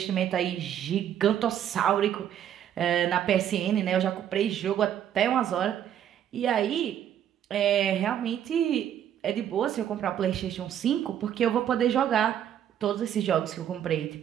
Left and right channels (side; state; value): left; quieter; 10.1 dB